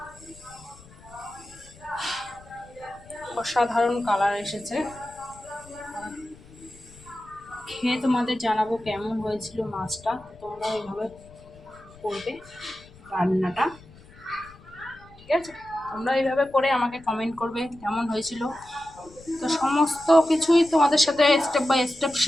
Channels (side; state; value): left; noise; rumble, 23 dB below the sound